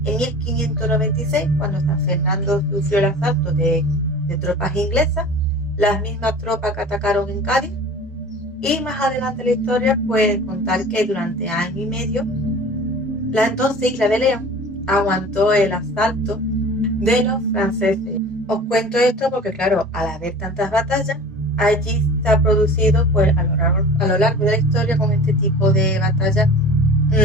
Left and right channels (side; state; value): both; normal; correlation 0.40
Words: En 1596, cuando San Fernando sufrió el asalto de tropas inglesas, las mismas tropas que atacaron en Cádiz. Y más adelante en la historia puede contar que durante año y medio la entonces isla de León aguantó el asalto de los franceses. Os cuento esto porque, claro, al haber tantas batallas, allí se ha producido, pues, a lo largo de la historia, con este tipo de batallas,